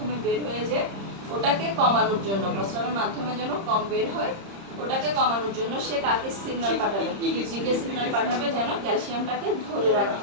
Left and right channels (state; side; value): late; left; 30 ms